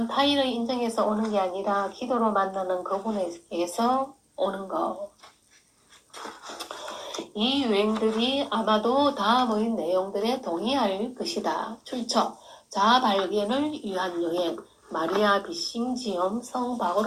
타인을 인정해서 오는 게 아니라 기도로 만나는 그분에게서 오는 거. 이 유행들이 아마도 다음의 내용들에 동의할 것이다. 출처 자아 발견을 위한 여행 마리아 비싱지엄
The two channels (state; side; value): identical; both; correlation 1.00